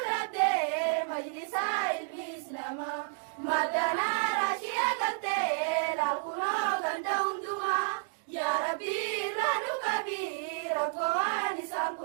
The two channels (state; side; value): silent; left; digital silence